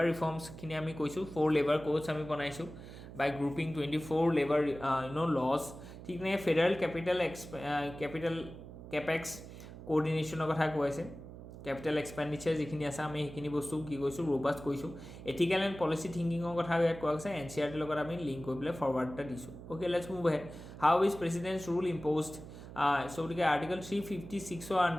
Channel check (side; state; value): right; noise; hum, 14 dB below the sound